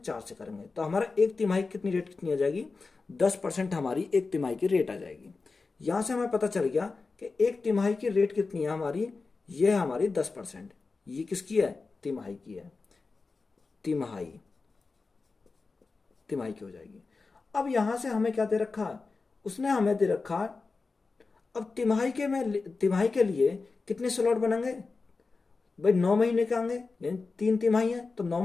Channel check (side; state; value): right; quieter; 4.1 dB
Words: से करेंगे। तो हमारा एक तिमाही कितनी रेट कितनी आ जाएगी, 10% हमारी एक तिमाही की रेट आ जाएगी। यहाँ से हमें पता चल गया कि एक तिमाही की रेट कितनी है हमारी, ये है हमारी 10%। ये किसकी है, तिमाही की है, तिमाही की हो जाएगी। अब यहां से हमें क्या दे रखा है, उसने हमें दे रखा है अब तिमाही के लिए कितने स्लॉट बनेंगे भाई, 9 महीने के आएंगे, यानी 3 तिमाही है तो 9